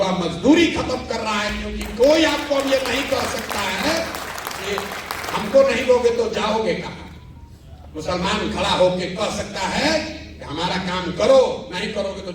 मजदूरी खत्म कर रहा है, क्योंकि कोई आपको अब ये नहीं कह सकता है कि हमको नहीं दोगे तो जाओगे कहां। मुसलमान खड़ा होकर कह सकता है कि हमारा काम करो, नहीं करोगे तो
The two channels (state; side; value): identical; both; correlation 1.00